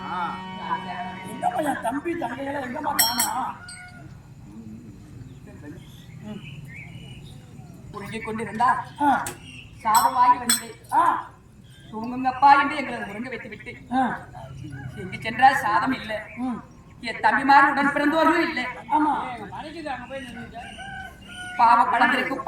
எங்கம்மா என் தம்பி தங்கைகளை எங்கம்மா காணா? உருகிக் கொண்டிருந்தா சாதம் வாங்கி வந்து தூங்குங்கப்பா என்று எங்களை உறங்க வைத்து விட்டு எங்கு சென்றால் சாதம் இல்லை, என் தம்பிமார் உடன் பிறந்தோர்களும் இல்லை. ஆமா பாவ பழந்திருக்கும்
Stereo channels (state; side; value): identical; both; correlation 1.00